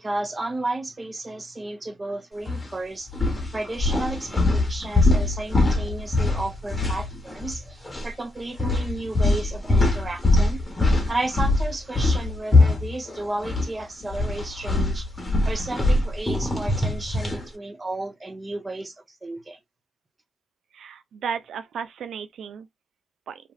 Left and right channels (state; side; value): normal; both; correlation 0.79